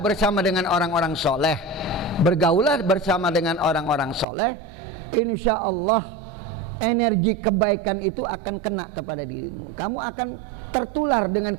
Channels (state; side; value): drops out; left; at 4.2 s